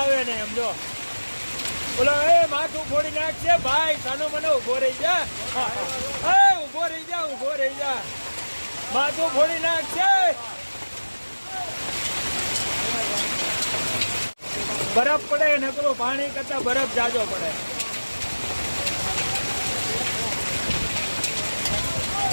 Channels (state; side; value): inverted; both; correlation -1.00